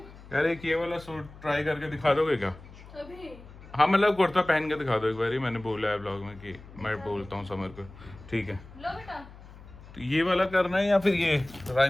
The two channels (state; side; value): noise; left; hum, 19 dB below the sound